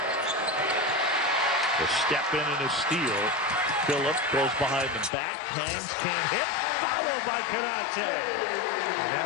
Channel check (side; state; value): right; drops out; at 5.1 s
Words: A step in and a steal. Phillip goes behind the back, hangs, can't hit, followed by Canate. And